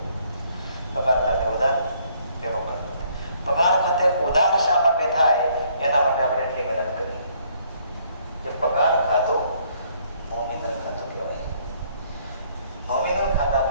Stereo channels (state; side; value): inverted; both; correlation -0.65